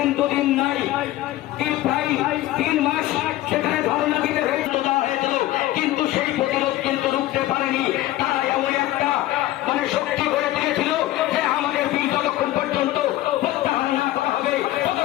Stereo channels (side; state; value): right; quieter; 15.6 dB